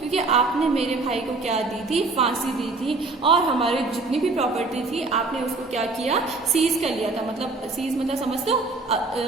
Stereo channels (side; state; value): left; quieter; 3.6 dB